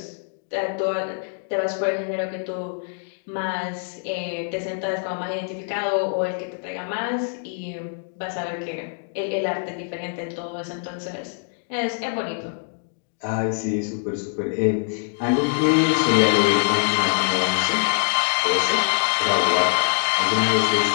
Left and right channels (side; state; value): right; silent; digital silence